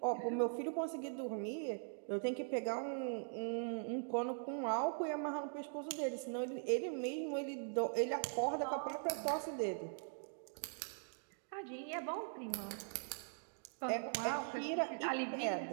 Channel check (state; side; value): silent; left; digital silence